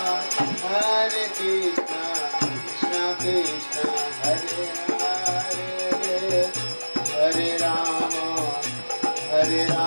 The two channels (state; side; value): inverted; both; correlation -1.00